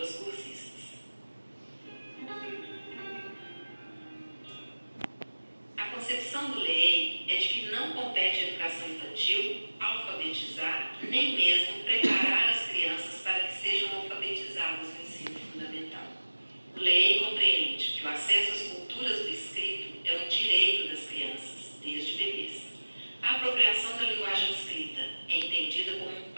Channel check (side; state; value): both; inverted; correlation -1.00